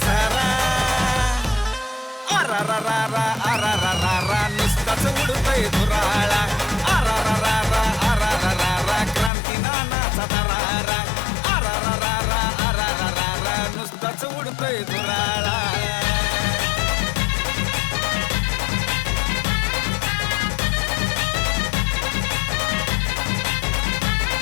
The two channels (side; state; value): right; drops out; at 9.3 s